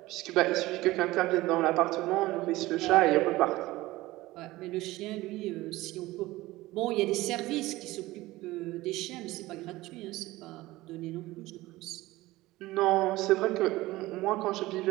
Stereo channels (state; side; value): quieter; left; 18.5 dB